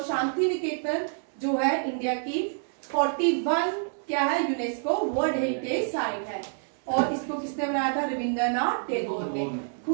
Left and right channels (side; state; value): left; silent; 60 dB below the other